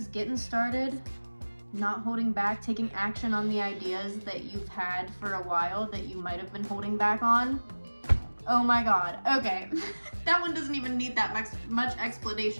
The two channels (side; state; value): both; inverted; correlation -1.00